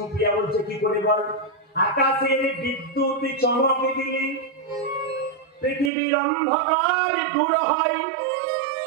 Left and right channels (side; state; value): left; drops out; at 5.9 s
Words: বলছে কি করে বল? আকাশের বিদ্যুৎ চমকে দিলে পৃথিবীর অন্ধকার দূর হয়।